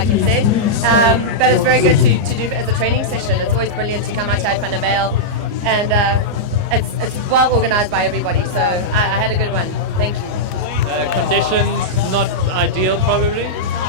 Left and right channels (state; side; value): late; left; 30 ms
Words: you said. But it's very good to do as a training session. It's always brilliant to come out to Van der Bijl, and it's well organised by everybody. So I had a good one. Thank you. Conditions not ideal, probably.